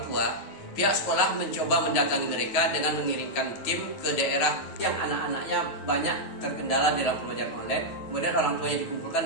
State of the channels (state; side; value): late; right; 9.2 ms